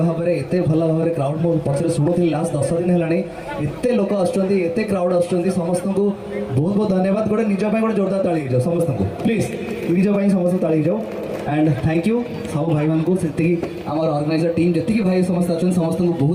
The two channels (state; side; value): identical; both; correlation 1.00